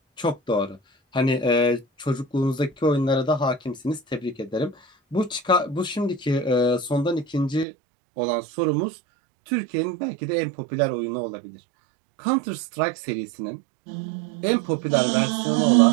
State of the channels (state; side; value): drops out; left; at 7.7 s